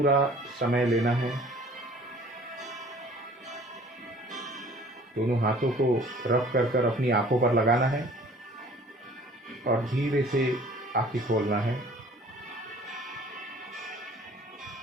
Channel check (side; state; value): both; normal; correlation 0.51